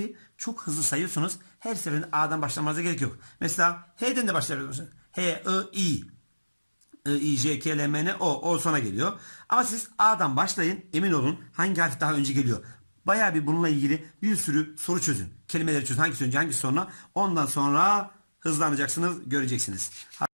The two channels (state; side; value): inverted; both; correlation -1.00